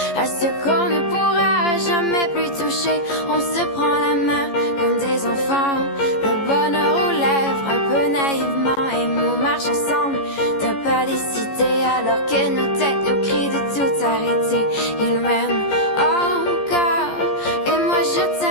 à ce qu'on ne pourra jamais plus toucher. On se prend la main comme des enfants, le bonheur aux lèvres un peu naïvement, et nous marche ensemble d'un pas décidé alors que nos têtes nous crient de tout arrêter. Il m'aime encore et moi je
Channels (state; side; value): late; right; 14 ms